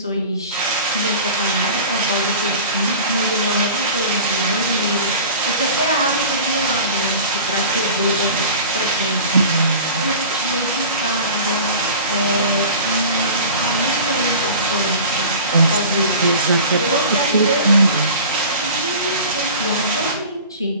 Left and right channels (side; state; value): both; inverted; correlation -0.39